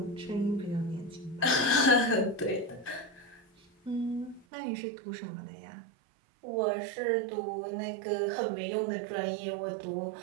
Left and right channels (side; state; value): left; drops out; at 4.5 s